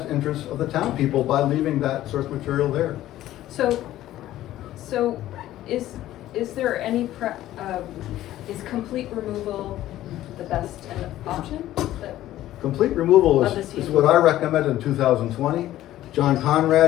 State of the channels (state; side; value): quieter; right; 14.0 dB